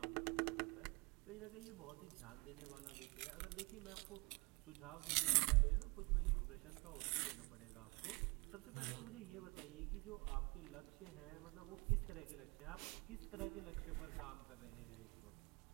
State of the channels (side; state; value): left; quieter; 28.3 dB